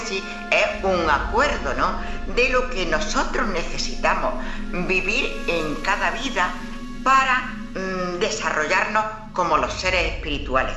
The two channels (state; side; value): identical; both; correlation 1.00